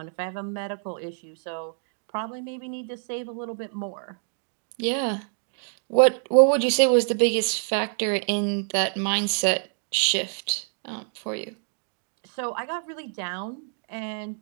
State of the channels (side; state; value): left; silent; digital silence